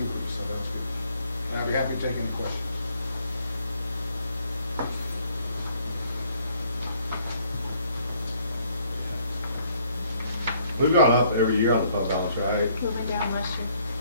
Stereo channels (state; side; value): inverted; both; correlation -0.64